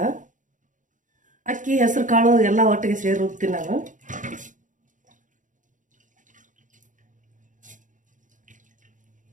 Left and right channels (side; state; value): left; late; 0.37 ms